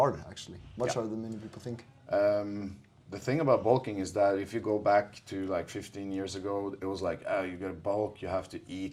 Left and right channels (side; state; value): both; identical; correlation 1.00